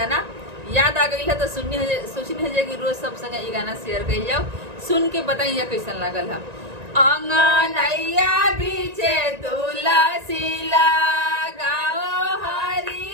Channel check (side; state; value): left; late; 1.9 ms